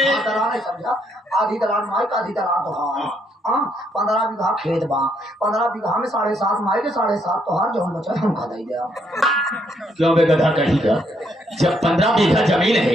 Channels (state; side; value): normal; both; correlation 0.73